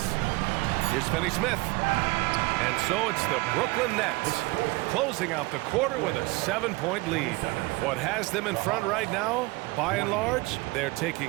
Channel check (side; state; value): left; quieter; 23.0 dB